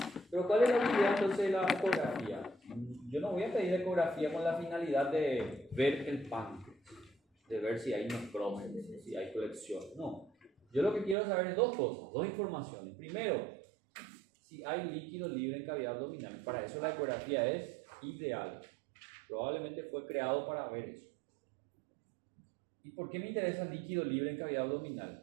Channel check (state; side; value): drops out; left; at 11.2 s